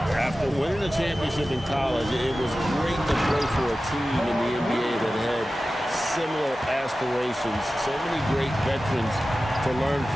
after winning a championship in college, it was great to play for a team in the NBA that had similar aspirations, so many great veterans to learn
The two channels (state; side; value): normal; both; correlation 0.95